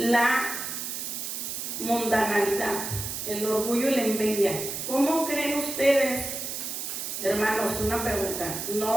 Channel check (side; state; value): right; noise; hiss, 5 dB below the sound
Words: mundanalidad, el orgullo y la envidia? ¿Cómo creen ustedes, hermanos? Una pregunta.